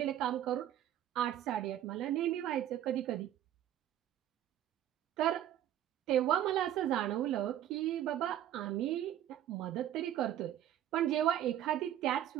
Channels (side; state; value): left; quieter; 11.6 dB